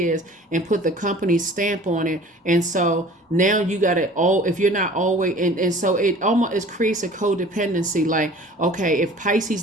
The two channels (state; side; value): normal; both; correlation 0.46